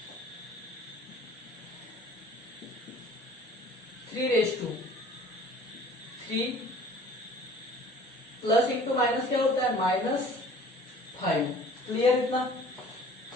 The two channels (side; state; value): both; normal; correlation 0.48